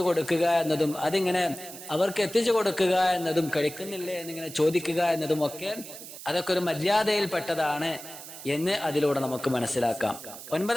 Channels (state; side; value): noise; right; hiss, 13 dB below the sound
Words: കൊടുക്കുക എന്നതും അതിങ്ങനെ അവർക്ക് എത്തിച്ചു കൊടുക്കുക എന്നതും കഴിക്കുന്നില്ലേ എന്നിങ്ങനെ ചോദിക്കുക എന്നതും ഒക്കെ അതൊക്കെ ഒരു മര്യാദയിൽപ്പെട്ടതാണ് എന്ന് അതിലൂടെ നമുക്ക് മനസ്സിലാക്കാം.